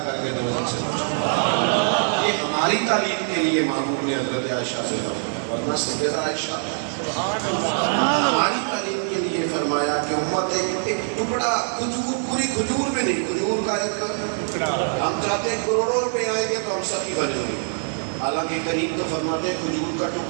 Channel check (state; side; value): silent; left; 63 dB below the other